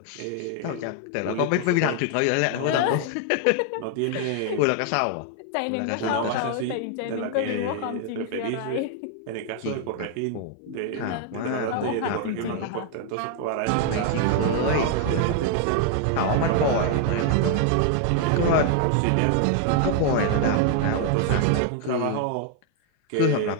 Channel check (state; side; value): different; both; correlation 0.00